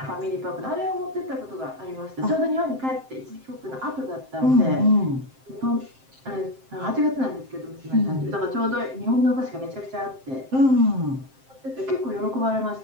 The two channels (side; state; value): left; late; 7.6 ms